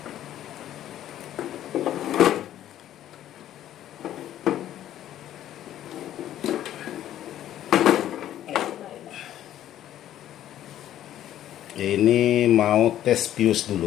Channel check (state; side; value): quieter; right; 12.1 dB